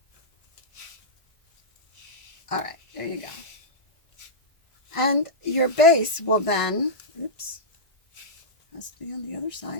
All right, there you go. And your base will then, oops, has to be on the other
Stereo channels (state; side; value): late; right; 1.8 ms